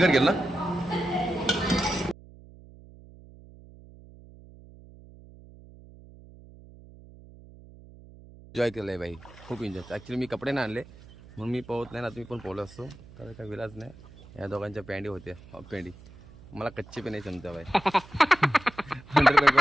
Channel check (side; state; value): right; noise; hum, 21 dB below the sound